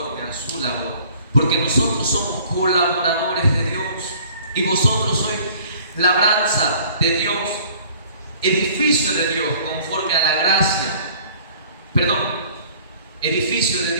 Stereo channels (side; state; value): both; inverted; correlation -0.53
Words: a su labor. Porque nosotros somos colaboradores de Dios, y vosotros sois labranza de Dios, edificio de Dios conforme a la gracia, edificio de